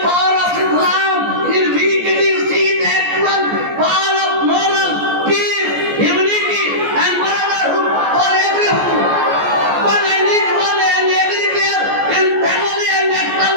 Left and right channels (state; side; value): late; left; 14 ms